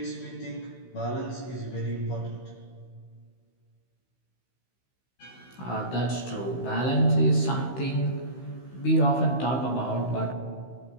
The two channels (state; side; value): late; right; 16 ms